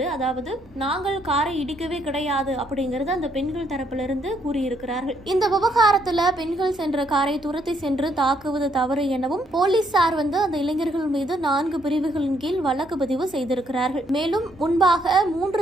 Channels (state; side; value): normal; both; correlation 0.71